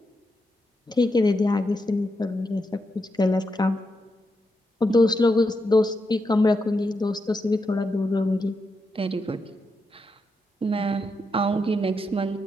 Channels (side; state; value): both; normal; correlation 0.84